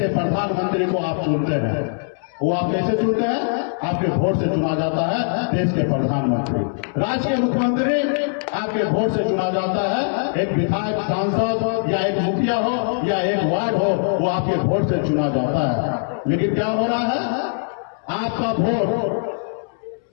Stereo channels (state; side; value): silent; right; 65 dB below the other